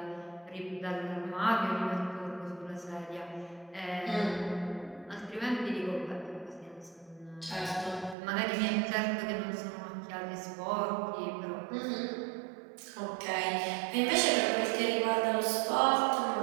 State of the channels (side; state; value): left; drops out; at 8.2 s